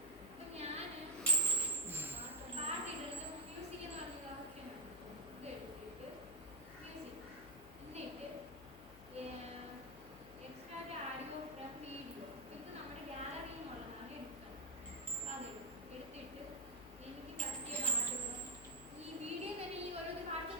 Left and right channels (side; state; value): left; noise; hum, 17 dB below the sound